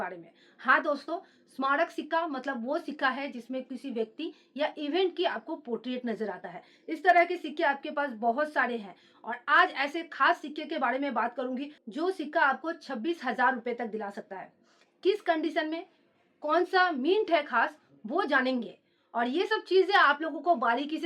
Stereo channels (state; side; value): identical; both; correlation 1.00